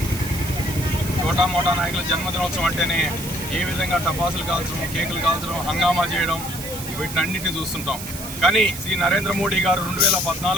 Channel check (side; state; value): right; noise; hiss, 10 dB below the sound